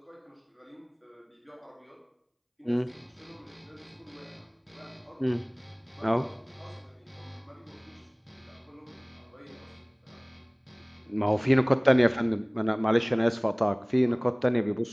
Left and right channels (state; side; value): identical; both; correlation 1.00